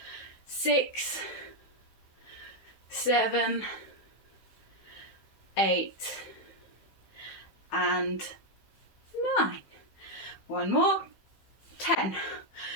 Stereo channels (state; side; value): late; right; 15 ms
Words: 6, 7, 8, and 9. One more. 10.